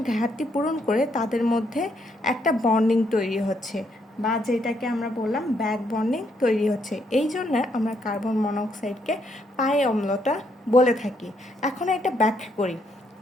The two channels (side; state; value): both; normal; correlation 0.74